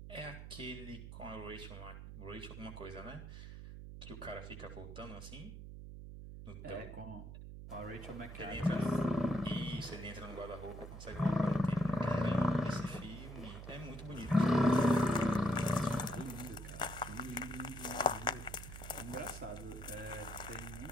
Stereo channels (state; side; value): noise; right; hum, 11 dB below the sound